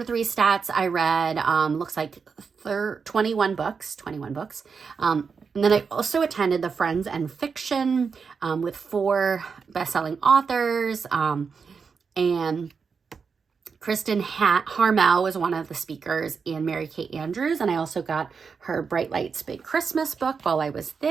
3 stats, I read, looks like 21 books. And then I also attended the Friends and Fiction with 4 best-selling authors. And Kristen Harmel was one of the speakers, and Mary Kate Andrews. And I also got her Bright Lights Big Christmas book while I was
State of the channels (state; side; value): quieter; left; 5.6 dB